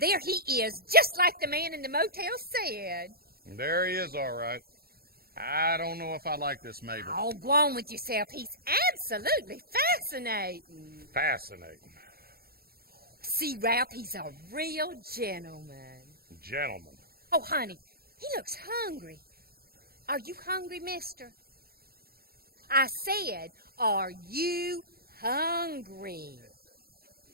there he is, just like the man in the motel said. There he is, all right. I don't know if I like this, Mabel. Oh, go on with yourself. He's absolutely fascinating. Fascinating. See, Ralph, he's a real gentleman. Gentleman. Oh, honey, he looks hungry. Are you hungry, mister? I said, are you hungry?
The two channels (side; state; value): left; late; 0.44 ms